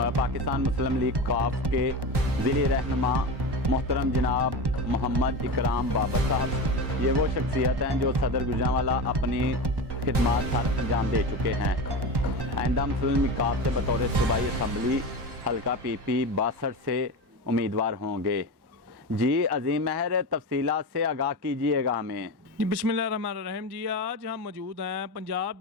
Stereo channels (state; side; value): late; left; 1.1 ms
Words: पाकिस्तान मुस्लिम लीग काफ के ज़िली रहनुमा मोहतरम जनाब मोहम्मद इकराम बाबर साहब। ये वो शख्सियत हैं जो सदर गुजरांवाला अपनी खिदमात सर अंजाम दे चुके हैं। आइंदा मुस्लिम लीग काफ से बतौर सूबाई असम्बली हल्का PP 62 से उम्मीदवार होंगे। जी अजीम महर, तफसीलात से आगाह कीजिएगा हमें। जी बिस्मिल्लाहिर्रहमानिर्रहीम। जी आज हम मौजूद हैं पंजाब